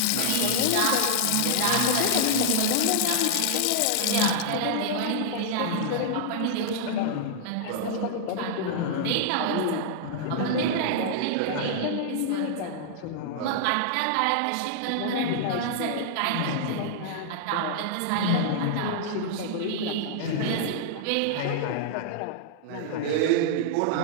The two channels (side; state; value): both; different; correlation -0.01